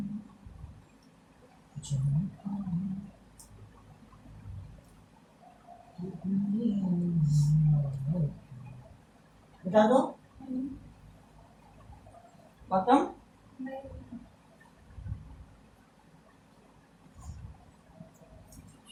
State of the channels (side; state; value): both; identical; correlation 1.00